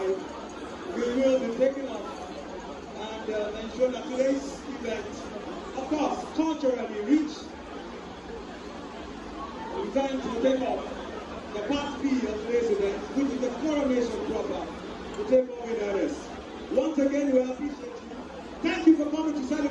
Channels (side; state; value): both; identical; correlation 1.00